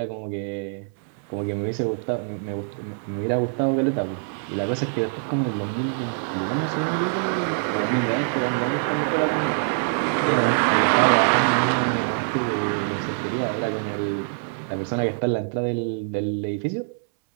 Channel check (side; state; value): left; silent; 62 dB below the other